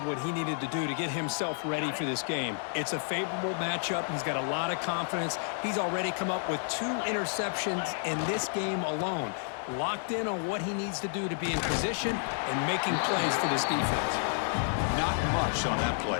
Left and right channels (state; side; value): silent; right; 57 dB below the other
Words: what he needed to do to get himself ready for this game. It's a favorable matchup. He's got a lot of confidence. He's already come up with 2 interceptions in this game alone. Locked in on what he needs to do to be in position and making plays for this defense. Not much on that